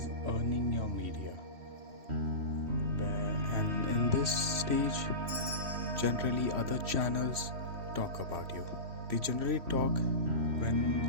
earning your media. And in this stage, generally other channels talk about you. They generally talk when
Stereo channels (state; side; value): late; left; 3.1 ms